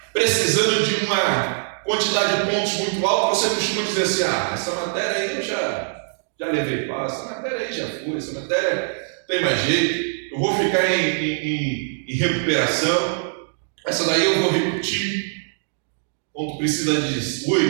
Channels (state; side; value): silent; left; digital silence